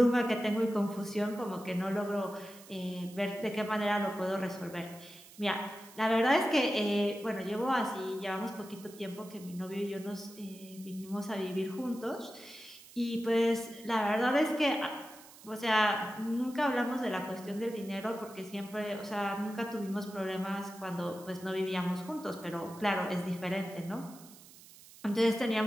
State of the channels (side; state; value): right; noise; hiss, 20 dB below the sound